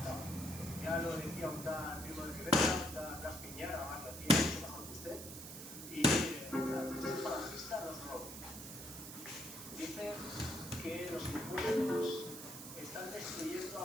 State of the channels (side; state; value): right; noise; hiss, 10 dB below the sound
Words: Ya lo decía un tal Primo de Rivera, un tal Blas Piñara, más lo hacía mucho mejor que usted. Y el falangista nos roba. Dice que los impuestos están destruyendo